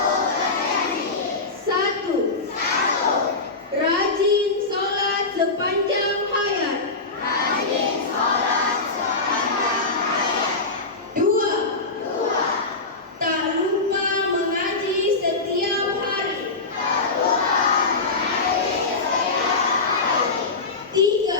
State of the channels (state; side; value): quieter; right; 3.7 dB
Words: 1. Rajin sholat sepanjang hayat. 2. Tak lupa mengaji setiap hari.